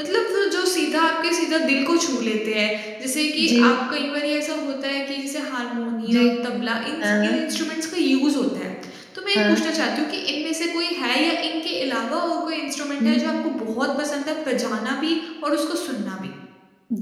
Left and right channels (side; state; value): both; identical; correlation 1.00